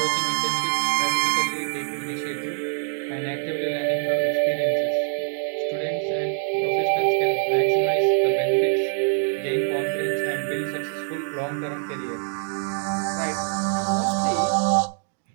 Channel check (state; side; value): silent; left; 56 dB below the other